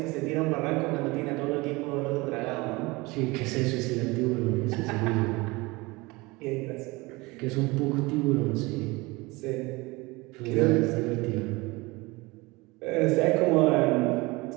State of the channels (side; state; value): left; quieter; 23.4 dB